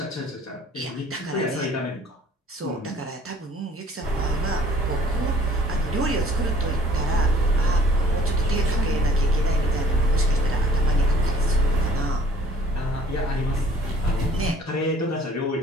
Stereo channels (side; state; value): both; normal; correlation 0.55